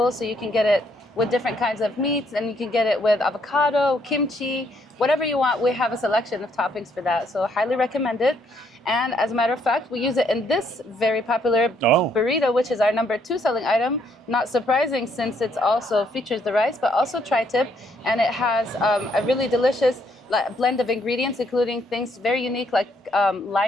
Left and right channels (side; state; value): both; normal; correlation 0.70